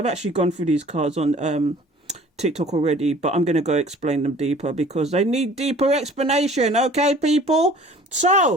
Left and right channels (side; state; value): both; normal; correlation 0.49